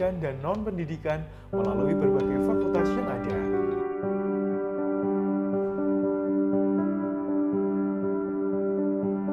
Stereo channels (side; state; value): both; identical; correlation 1.00